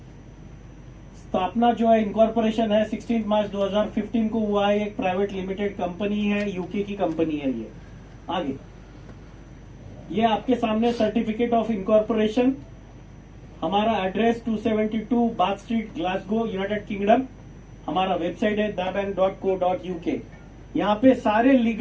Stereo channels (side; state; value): both; identical; correlation 1.00